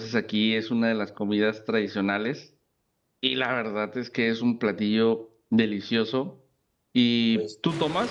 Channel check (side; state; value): both; identical; correlation 1.00